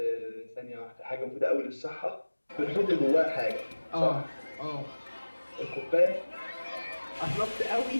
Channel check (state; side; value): inverted; both; correlation -1.00